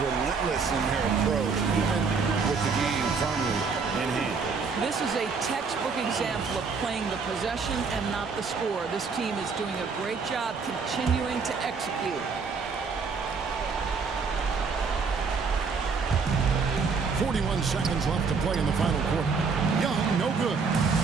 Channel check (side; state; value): left; quieter; 5.1 dB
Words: in their approach, even with the game firmly in hand. This is a textbook example of playing the possession and not the score. This team is doing a great job continuing to execute. 41 seconds left to play in the final quarter. Young, no good.